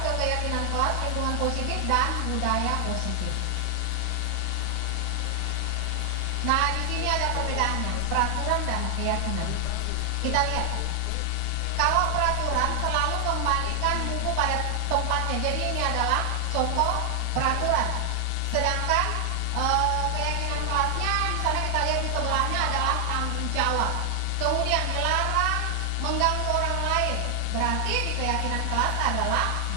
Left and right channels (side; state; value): both; different; correlation 0.00